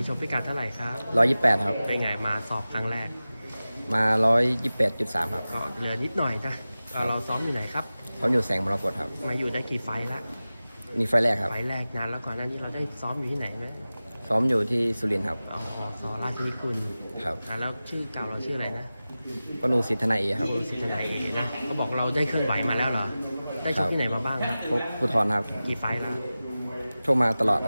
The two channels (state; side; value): inverted; both; correlation -0.96